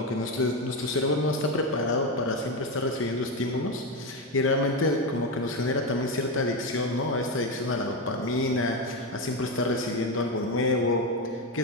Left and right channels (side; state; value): both; normal; correlation 0.13